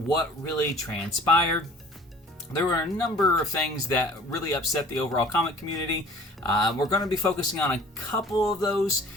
really transpired. There were a number of things that really upset the overall comic community. We're going to be focusing on a couple of those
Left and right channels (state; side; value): normal; both; correlation 0.49